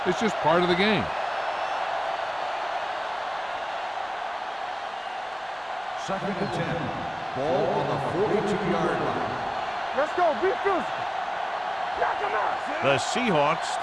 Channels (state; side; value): identical; both; correlation 1.00